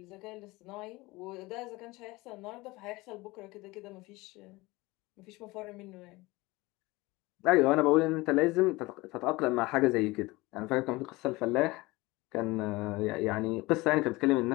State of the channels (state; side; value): quieter; right; 21.7 dB